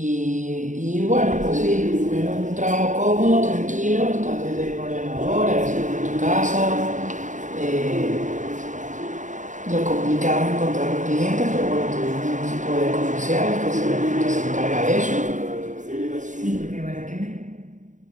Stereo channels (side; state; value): left; late; 0.36 ms